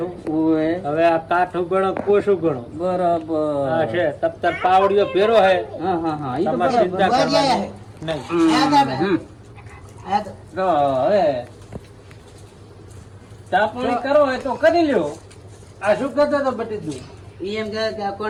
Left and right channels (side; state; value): both; identical; correlation 1.00